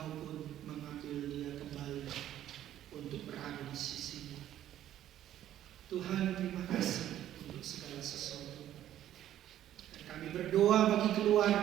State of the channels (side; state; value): left; quieter; 12.0 dB